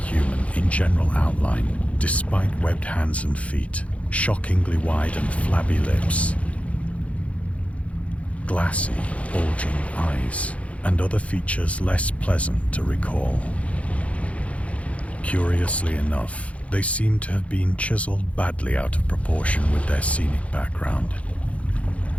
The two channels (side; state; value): right; late; 0.064 ms